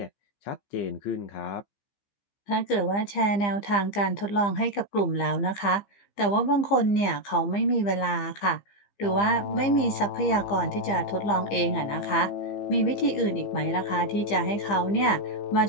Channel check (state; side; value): late; right; 15 ms